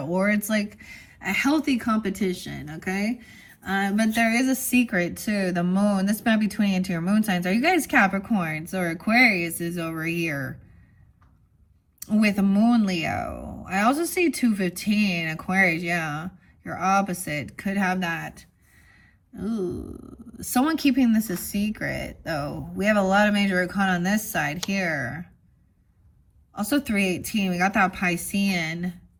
or it's like a healthy competition, okay? But there is a secret to the moon. This might be tuning into your moon signs. Are you guys Capricorns or Aquarius is over here with a moon Leo? I also see 215 Aquarius. Yeah, your opposite could have that. Ooh. Someone keeping this a secret, though. We have a lot of major arcana on this side here. Also 318. We got that Piscean.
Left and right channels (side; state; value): both; identical; correlation 1.00